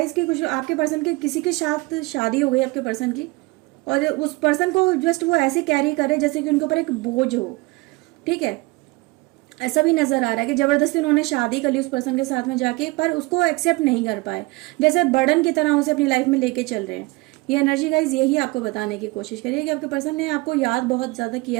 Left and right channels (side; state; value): left; quieter; 23.6 dB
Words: कि कुछ आपके पर्सन के किसी के साथ शादी हो गई आपके पर्सन की, और उस पर्सन को जस्ट वो ऐसे कैरी करे जैसे कि उनके ऊपर एक बोझ हो। ठीक है, ऐसा भी नजर आ रहा है कि जबरदस्ती उन्होंने शादी कर ली उस पर्सन के साथ में जाके, पर उसको एक्सेप्ट नहीं कर पाए, जैसे बर्डन की तरह उसे अपनी लाइफ में लेके चल रहे हैं। ये एनर्जी गाइज यही आपको बताने की कोशिश करिए कि आपके पर्सन ने आपको याद बहुत ज़्यादा